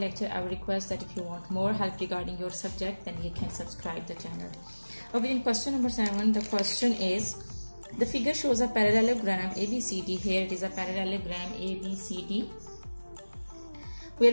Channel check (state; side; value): inverted; both; correlation -1.00